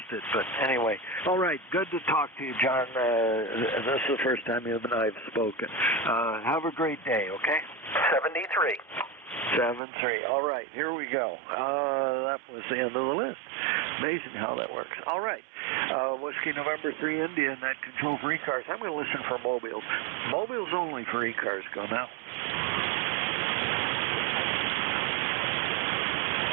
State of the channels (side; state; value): left; drops out; at 9.8 s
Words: it. But anyway, all right, good to talk to you, John. This is the first time you and I have spoken. Have a great day, okay? 73. 7-3. All right, here we go. That was the end of the list. Amazing how that works. All right. Whiskey November 3 India and that control for ECARS. I'm going to listen for mobiles. Mobiles only for ECARS. Go now.